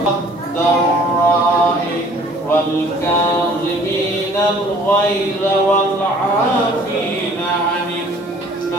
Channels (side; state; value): both; normal; correlation 0.54